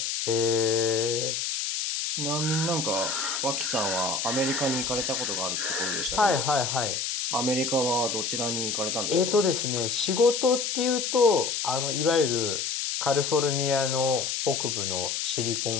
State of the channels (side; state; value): left; noise; hiss, 1 dB below the sound